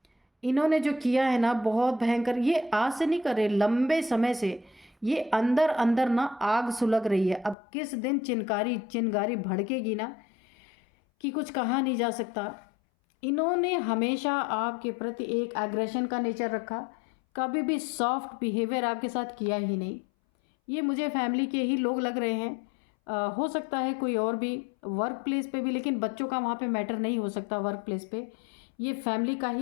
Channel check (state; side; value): drops out; right; at 7.6 s